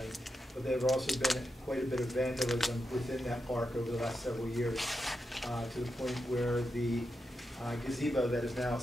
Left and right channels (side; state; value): both; normal; correlation 0.87